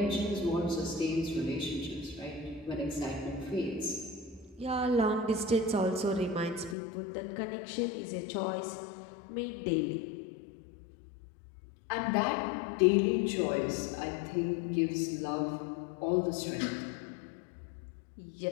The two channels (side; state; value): right; drops out; at 6.8 s